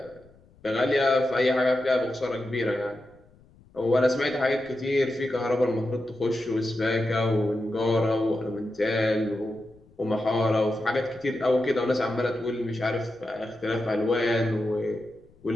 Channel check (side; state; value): left; noise; rumble, 28 dB below the sound